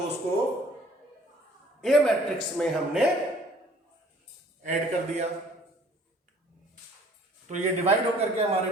को ए मैट्रिक्स में हमने ऐड कर दिया, तो ये डिवाइड होकर के हमारे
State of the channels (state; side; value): normal; both; correlation 0.55